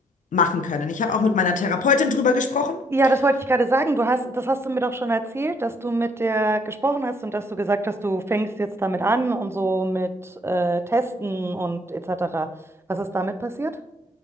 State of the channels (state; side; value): normal; both; correlation 0.65